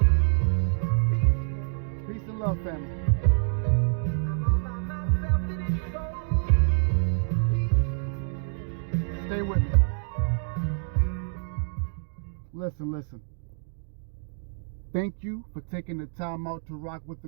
Peace and love, family. I'm all by myself and it's so peaceful. Stay with me. Listen. Thank you for taking the time out to rock with a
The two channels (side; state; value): left; silent; digital silence